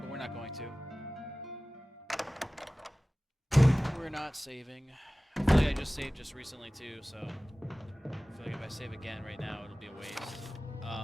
we're not going to. We're not saving. I feel like I just saved just recently too, so I feel like if I save again right now, it'll be a waste.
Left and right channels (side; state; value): both; normal; correlation 0.98